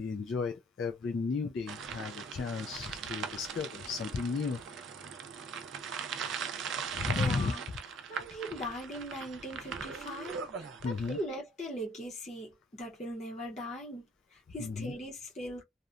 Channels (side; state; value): both; normal; correlation 0.58